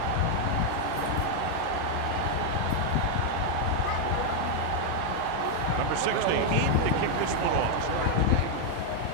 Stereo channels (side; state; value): both; different; correlation 0.00